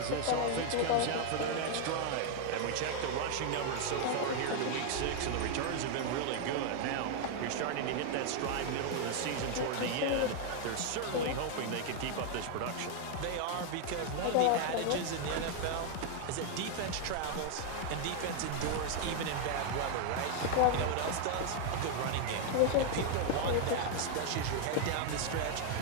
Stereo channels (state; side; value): different; both; correlation 0.00